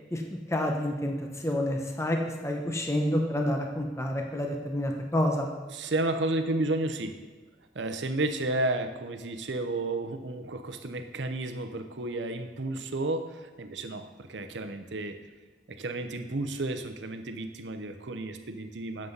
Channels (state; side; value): normal; both; correlation 0.51